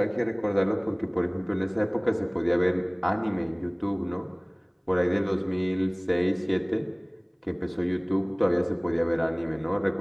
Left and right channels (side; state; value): both; identical; correlation 1.00